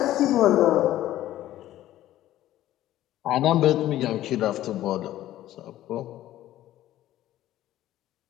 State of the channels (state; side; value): quieter; right; 13.8 dB